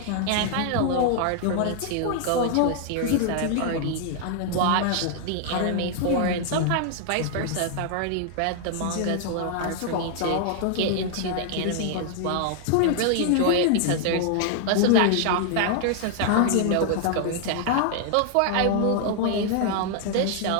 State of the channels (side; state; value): both; different; correlation 0.00